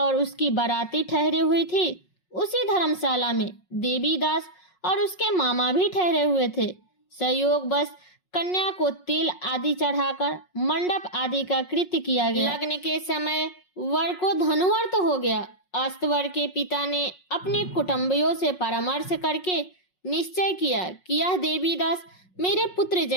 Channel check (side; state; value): right; late; 5.5 ms